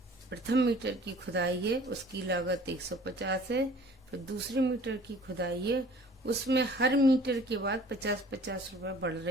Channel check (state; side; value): normal; both; correlation 0.51